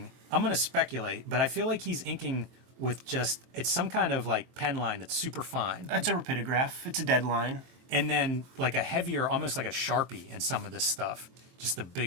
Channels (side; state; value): left; late; 23 ms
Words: I'm going to speculate, but I feel like he's inking with it's some kind of, like, pen line that's super fine. It's a rapidograph. It's a deadline. And then, like, a heavier, almost like a Sharpie in some of this stuff. Just the